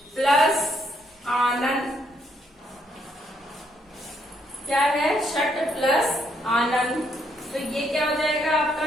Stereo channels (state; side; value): normal; both; correlation 0.73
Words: प्लस आनंद, क्या है? षट प्लस आनंद, तो ये क्या हो जाएगा आपका?